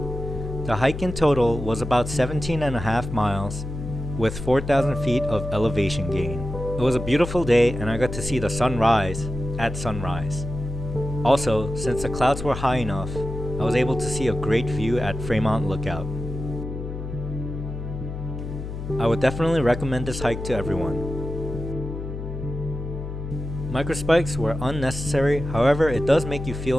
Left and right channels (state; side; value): noise; left; hum, 7 dB below the sound